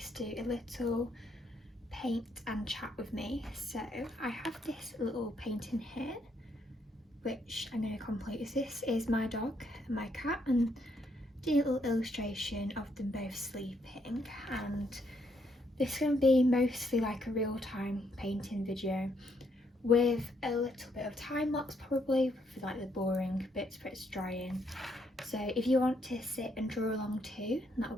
to do a little paint and chat with me. So I have this little painting here which I'm going to complete. This is my dog and my cat, and do a little illustration of them both sleeping, and this is going to be mostly like a real-time painting video with a little bit of time lapse probably for like the boring bits where it's drying. So if you want to sit and draw along too, that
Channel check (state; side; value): normal; both; correlation 0.73